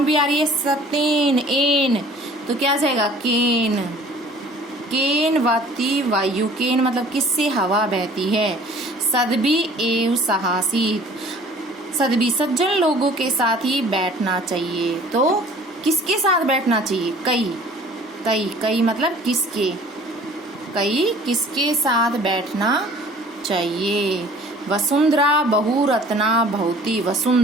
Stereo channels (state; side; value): normal; both; correlation 0.50